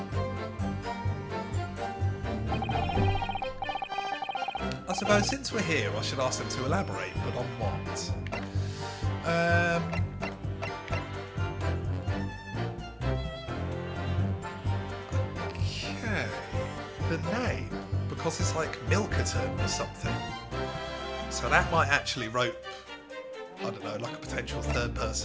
I suppose since we're here, I should ask them to elaborate, but on what? Okay. The name, because it's like Milkerton or something. So that might actually rope, I don't know, like a potential third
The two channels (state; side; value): identical; both; correlation 1.00